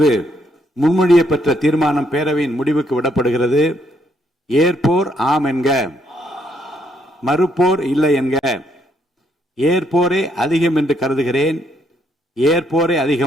முன்மொழியப்பட்ட தீர்மானம் பேரவையின் முடிவுக்கு விடப்படுகிறது. ஏற்போர் ஆம் என்க, மறுப்போர் இல்லை என்க. ஏற்போரே அதிகம் என்று கருதுகிறேன். ஏற்போரே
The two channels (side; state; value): both; normal; correlation 0.72